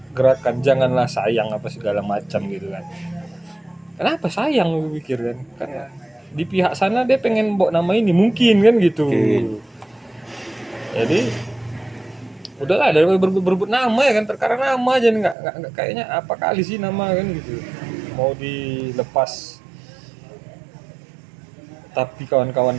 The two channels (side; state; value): left; drops out; at 15.4 s